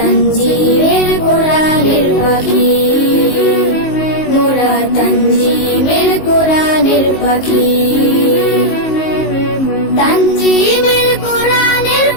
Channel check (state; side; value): late; right; 19 ms